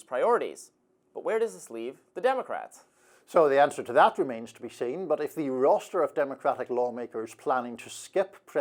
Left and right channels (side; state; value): both; identical; correlation 1.00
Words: priorities. But where does this leave the Democrats? So the answer to that remains to be seen, but if the roster of Democratic lawmakers planning to skip